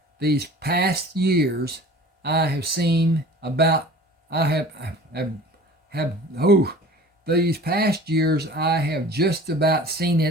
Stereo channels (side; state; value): both; normal; correlation 0.43